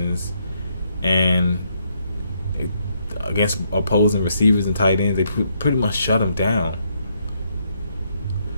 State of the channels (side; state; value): both; inverted; correlation -0.74